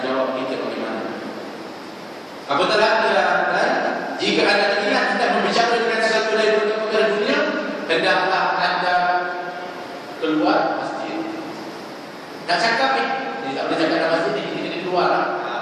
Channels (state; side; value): identical; both; correlation 1.00